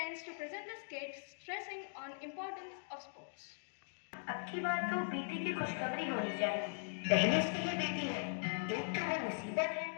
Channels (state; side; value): silent; right; digital silence